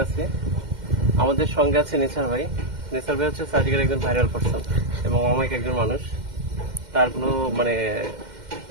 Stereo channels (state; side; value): late; left; 2.1 ms